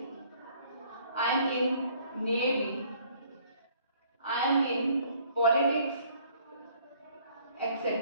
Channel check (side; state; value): both; inverted; correlation -0.60